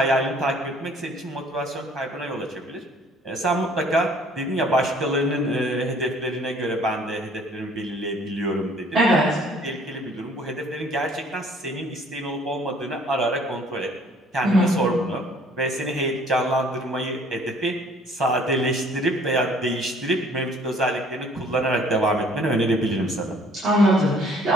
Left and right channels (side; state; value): both; normal; correlation 0.57